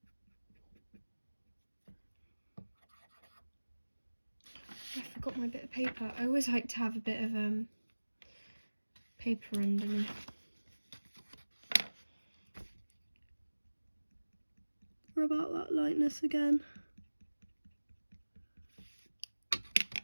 I forgot my bit of paper. I always like to have a bit of paper underneath. Rub out that lightness again.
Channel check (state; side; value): inverted; both; correlation -1.00